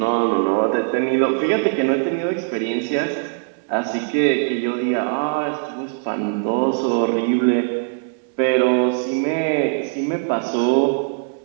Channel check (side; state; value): left; silent; 65 dB below the other